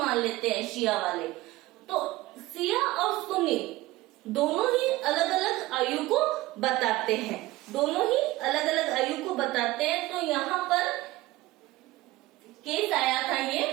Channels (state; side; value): quieter; left; 18.4 dB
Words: लेते हैं शिया वाले। तो शिया और सुन्नी दोनों ही अलग अलग आयु को बताते हैं, तो यहाँ पर केस आया था, ये